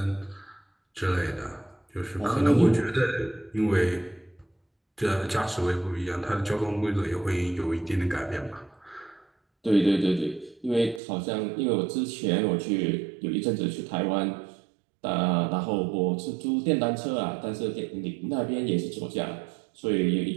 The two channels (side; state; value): left; drops out; at 11.0 s